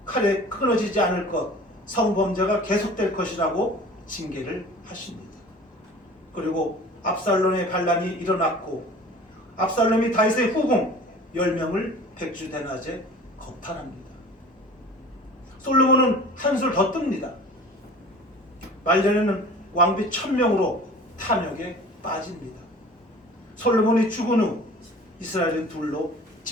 칼에 끊어지지 않을 것, 성범죄가 계속될 것이라고 징계를 하십니다. 그리고 압살롬의 반란이 일어났고 압살롬이 다윗의 후궁 10명을 백주대낮에 겁탈합니다. 솔로몬은 한술 더 뜹니다. 말년에는 왕비 1000명으로 탐욕에 빠집니다. 솔로몬이 죽은 후 이스라엘은 둘로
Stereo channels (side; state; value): both; normal; correlation 0.43